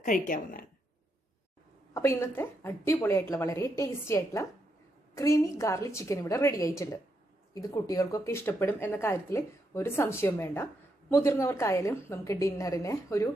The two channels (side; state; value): both; normal; correlation 0.80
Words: കഴിക്കാവുന്നതാണ്. അപ്പോൾ ഇന്നത്തെ അടിപൊളിയായിട്ടുള്ള വളരെ ടേസ്റ്റി ആയിട്ടുള്ള ക്രീമി ഗാർലിക് ചിക്കൻ ഇവിടെ റെഡി ആയിട്ടുണ്ട്. ഇത് കുട്ടികൾക്കൊക്കെ ഇഷ്ടപ്പെടും എന്ന കാര്യത്തിൽ ഒരു സംശയവും വേണ്ട. മുതിർന്നവർക്കായാലും നമുക്ക് ഡിന്നറിന് ഒരു